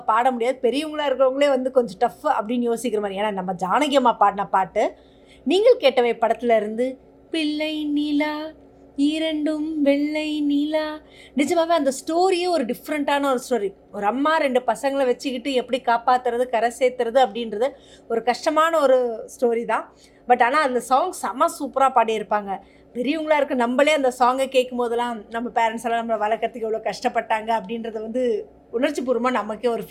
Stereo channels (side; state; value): both; identical; correlation 1.00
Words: பாட முடியாது. பெரியவங்களாக இருக்கிறவங்களே கொஞ்சம் டஃப் அப்படின்னு யோசிக்கிற மாதிரி. ஏன்னா நம்ம ஜானகி அம்மா பாடின பாட்டு நீங்கள் கேட்டவை படத்தில் இருந்து பிள்ளை நிலா இரண்டும் வெள்ளை நிலா. நிஜமாகவே அந்த ஸ்டோரியே ஒரு டிஃப்ரெண்ட்டான ஒரு ஸ்டோரி. ஒரு அம்மா 2 பசங்களை வச்சுக்கிட்டு எப்படி காப்பாற்றுறது, கரை சேர்த்துறது அப்படின்றது ஒரு கஷ்டமான ஒரு ஸ்டோரி தான். பட் ஆனால் அந்த சாங் செம சூப்பராக பாடியிருப்பாங்க. பெரியவங்களாக இருக்க நம்மளே அந்த சாங்கை கேட்கும் போதெல்லாம் நம்ம பேரண்ட்ஸ் எல்லாம் நம்மளை வளர்க்குறதுக்கு எவ்வளோ கஷ்டப்பட்டாங்க அப்படின்றத உணர்ச்சி பூர்வமாக நமக்கே ஒரு